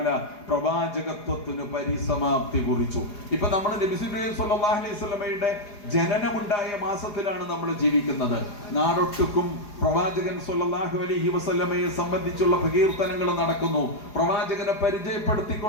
പ്രവാചകത്വത്തിന് പരിസമാപ്തി കുറിച്ചു. ഇപ്പൊ നമ്മൾ നബി സല്ലല്ലാഹു അലൈഹി വസല്ലമയുടെ ജനനമുണ്ടായ മാസത്തിലാണ് നമ്മൾ ജീവിക്കുന്നത്. നാടൊട്ടുക്കും പ്രവാചകൻ സ്വല്ലല്ലാഹു അലൈഹി വസല്ലമയെ സംബന്ധിച്ചുള്ള പ്രകീർത്തനങ്ങൾ നടക്കുന്നു. പ്രവാചകനെ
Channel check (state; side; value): late; right; 4.8 ms